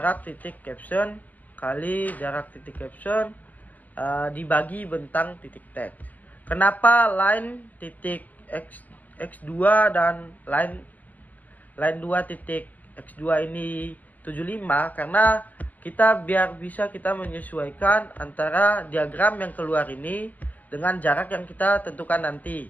titik caption kali jarak titik caption dibagi bentang titik teks. Kenapa line titik x2 dan line 2 titik x2 ini 75? Karena biar bisa kita menyesuaikan antara diagram yang keluar ini dengan jarak yang kita tentukan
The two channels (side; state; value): right; late; 0.081 ms